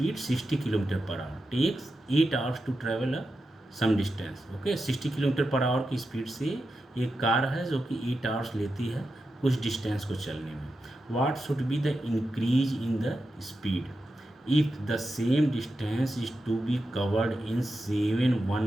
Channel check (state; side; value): normal; both; correlation 0.89